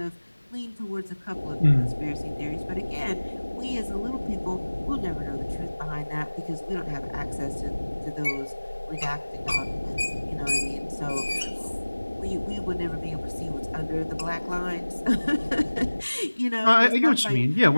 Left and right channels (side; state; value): both; inverted; correlation -1.00